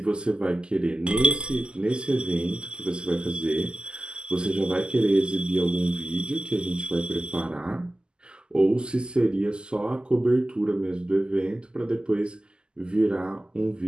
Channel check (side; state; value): left; late; 0.048 ms